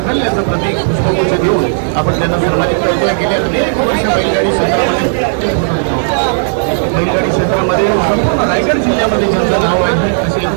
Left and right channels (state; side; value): silent; left; 72 dB below the other